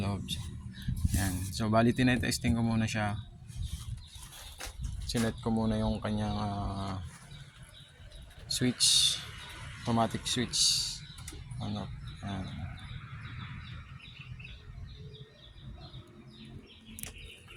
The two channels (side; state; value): both; identical; correlation 1.00